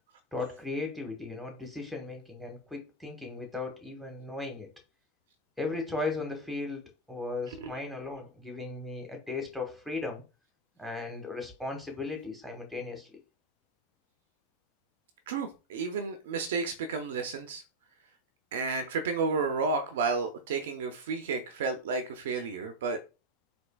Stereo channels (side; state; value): both; normal; correlation 0.05